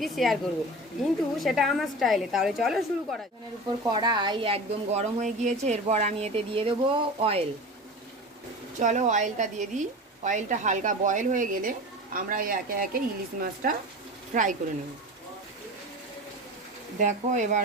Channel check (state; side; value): normal; both; correlation 0.32